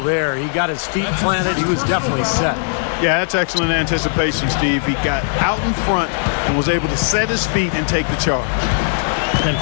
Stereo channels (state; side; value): silent; right; digital silence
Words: there. He got his feet planted. He was definitely set. Yeah, that's excellent anticipation, Steve. He got out in front and was able to set his feet and take the charge. And